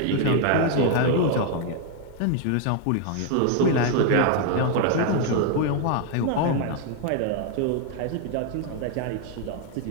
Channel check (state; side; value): different; both; correlation 0.00